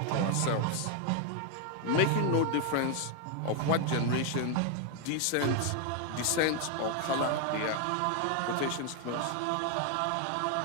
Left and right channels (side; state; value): both; different; correlation 0.01